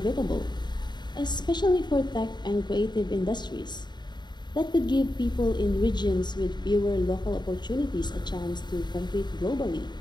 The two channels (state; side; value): late; right; 0.21 ms